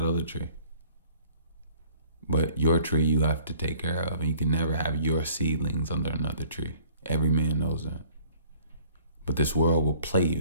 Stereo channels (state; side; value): inverted; both; correlation -0.54